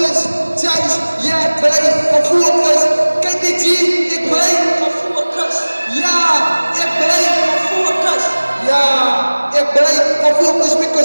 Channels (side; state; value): both; inverted; correlation -1.00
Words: guys, yeah, break. I'm focused, can't be it break. I'm focused. Yeah, it break. I'm focused. Yeah, it break. I'm focused